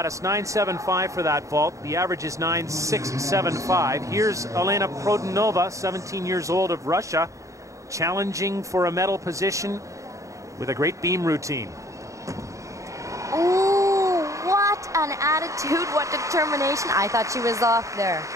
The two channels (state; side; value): late; left; 0.15 ms